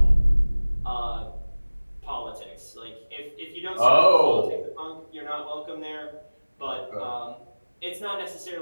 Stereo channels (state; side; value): inverted; both; correlation -1.00